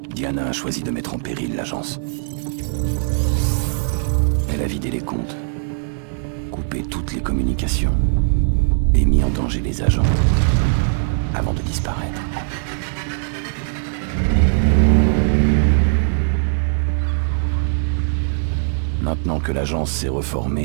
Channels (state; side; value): silent; left; digital silence